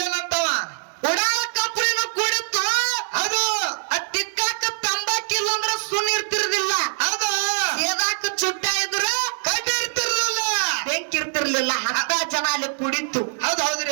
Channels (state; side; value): silent; left; digital silence